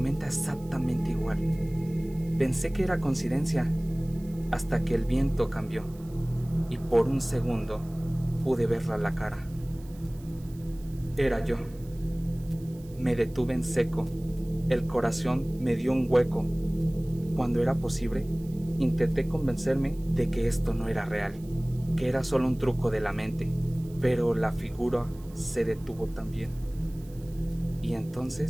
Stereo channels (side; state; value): right; noise; hiss, 25 dB below the sound